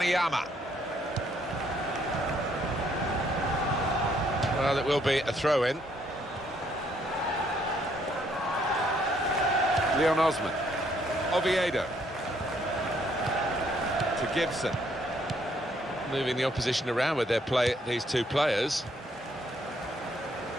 Well, it will be a throw-in. Leon Osman. Oviedo. To Gibson. Moving the opposition around with their play, these two players.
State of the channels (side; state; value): both; normal; correlation 0.68